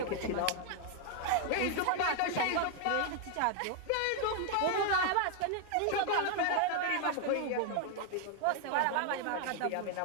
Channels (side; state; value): both; different; correlation 0.00